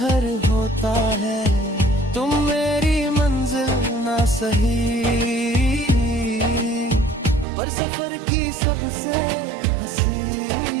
होता है। तुम मेरी मंजिल ना सही, पर सफर की सबसे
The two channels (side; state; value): left; drops out; at 7.5 s